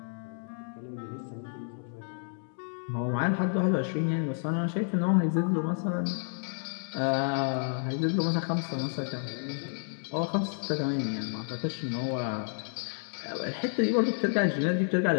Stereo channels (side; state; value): right; silent; digital silence